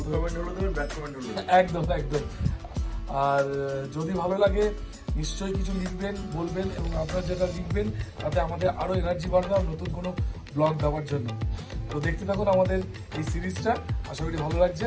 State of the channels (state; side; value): identical; both; correlation 1.00